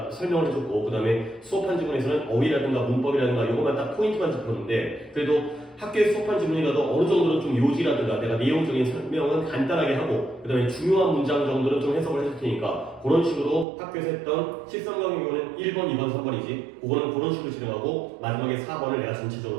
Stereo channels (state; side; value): drops out; left; at 13.7 s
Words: 설명을 해줬고, 그 다음에 수업한 지문에서는 어휘라든가 문법이라든가 이것만 딱 포인트만 짚었는데, 그래도 학교에 수업한 지문이라도 어느 정도는 좀 요지라든가 내가 내용적인 설명은 간단하게 하고, 그 다음에 중요한 문장 정도는 좀 해석을 해줄 테니까 그런 식으로 학교에서 했던 13강의 경우는 1번, 2번, 3번이지 그거는 그런 식으로 진행하고 마지막에 4번을 내가